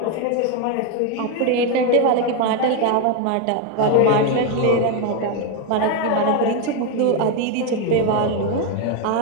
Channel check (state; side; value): different; both; correlation 0.02